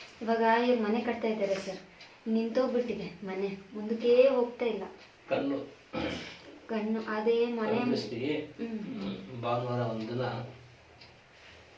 ಇವಾಗ ಇವ್ರು ಮನೆ ಕಟ್ತಾ ಇದ್ದಾರೆ ಸರ್, ನಿಂತೋಗ್ಬಿಟ್ಟಿದೆ ಮನೆ, ಮುಂದಕ್ಕೆ ಹೋಗ್ತಾ ಇಲ್ಲ. ಕಣ್ಣು ಅದೇ ಮನೆ. ಭಾನುವಾರ ಒಂದಿನ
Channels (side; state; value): both; identical; correlation 1.00